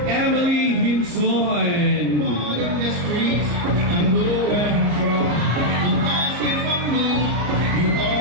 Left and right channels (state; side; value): late; left; 33 ms